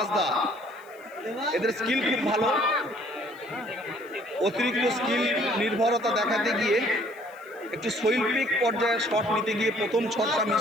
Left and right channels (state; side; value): noise; left; hiss, 28 dB below the sound